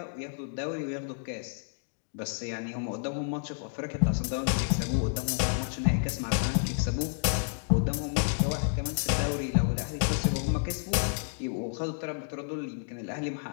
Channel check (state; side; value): silent; right; digital silence